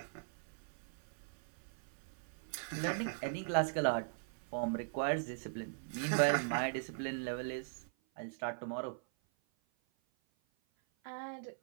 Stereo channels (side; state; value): left; silent; 51 dB below the other